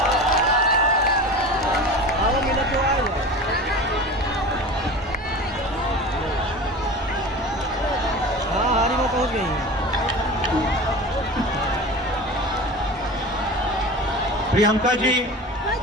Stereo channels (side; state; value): both; normal; correlation 0.34